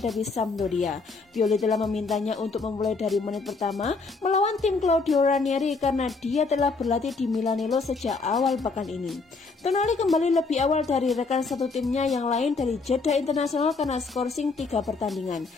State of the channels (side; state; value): right; quieter; 4.1 dB